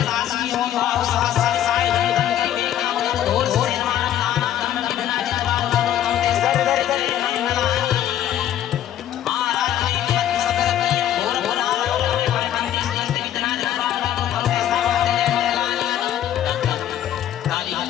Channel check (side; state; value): right; quieter; 11.4 dB